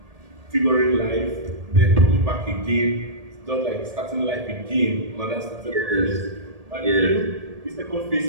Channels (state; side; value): late; left; 1.8 ms